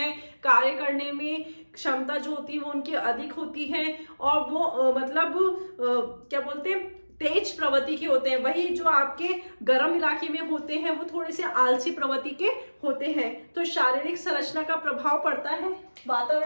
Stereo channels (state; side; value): inverted; both; correlation -1.00